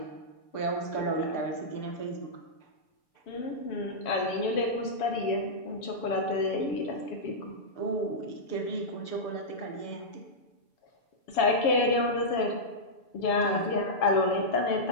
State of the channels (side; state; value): right; late; 7.2 ms